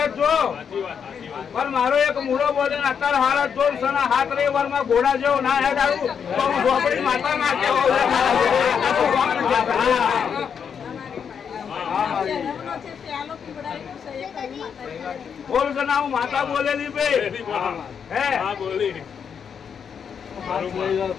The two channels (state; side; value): quieter; right; 7.1 dB